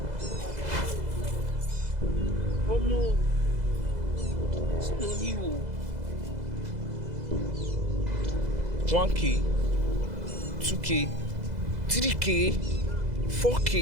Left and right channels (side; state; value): left; late; 2.0 ms